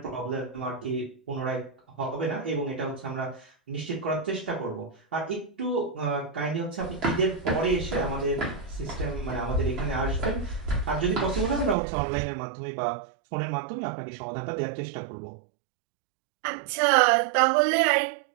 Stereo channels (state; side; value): drops out; left; at 11.8 s